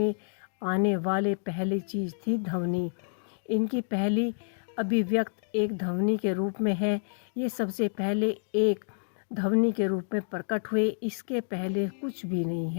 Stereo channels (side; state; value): right; silent; digital silence